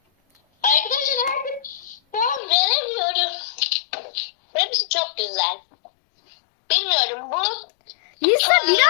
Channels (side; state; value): right; drops out; at 2.4 s